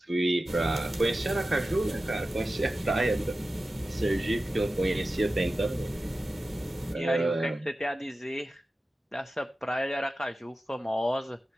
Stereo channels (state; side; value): normal; both; correlation 0.94